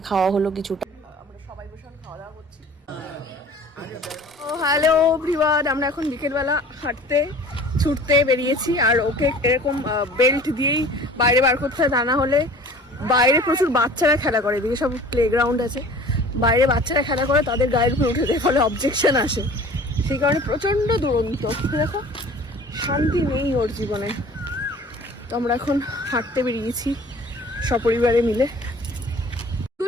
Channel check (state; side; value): normal; both; correlation 0.46